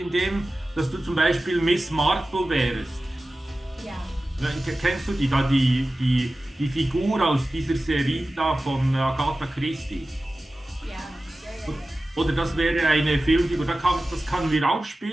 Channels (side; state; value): both; normal; correlation 0.95